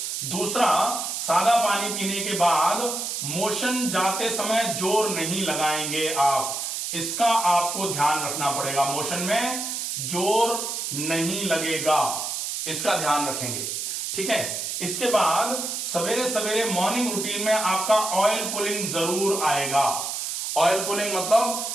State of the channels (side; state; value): right; noise; hiss, 3 dB below the sound